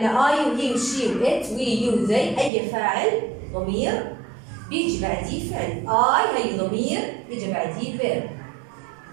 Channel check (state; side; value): drops out; left; at 2.5 s